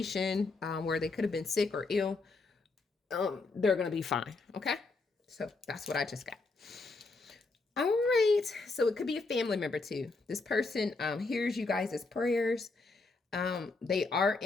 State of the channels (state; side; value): quieter; right; 3.7 dB